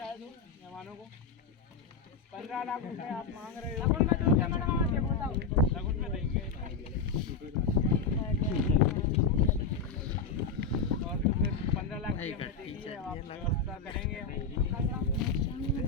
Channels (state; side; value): quieter; right; 5.0 dB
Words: दो मेहमानों को 15 लाख रुपए आप मांग रहे हो। लगन में दो क्या मैडम, आप देखो बताओ। लगन में देंगे और तो फिर 15 लाख की हमने देखी है, आप व्यवस्था करेंगे।